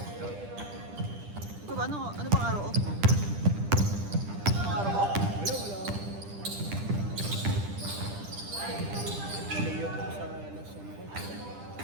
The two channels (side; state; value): left; late; 10 ms